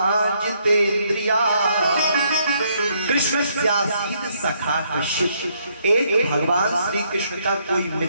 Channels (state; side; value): inverted; both; correlation -0.71